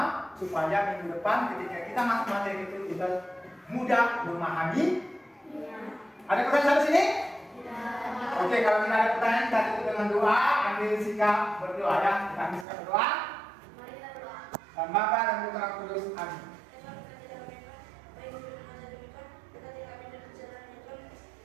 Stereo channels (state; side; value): drops out; left; at 12.7 s